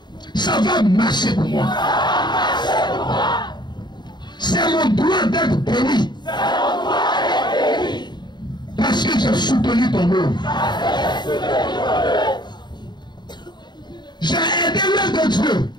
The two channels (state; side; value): late; right; 0.21 ms